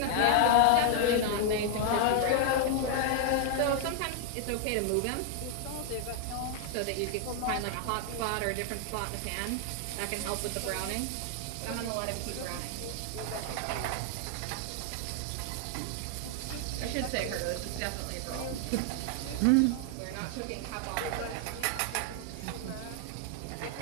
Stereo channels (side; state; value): both; different; correlation 0.00